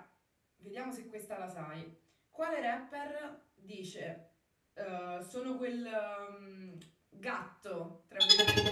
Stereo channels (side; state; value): both; identical; correlation 1.00